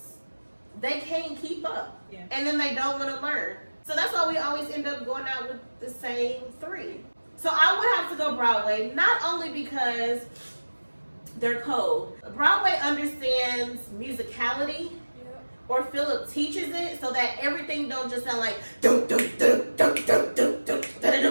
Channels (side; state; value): both; inverted; correlation -1.00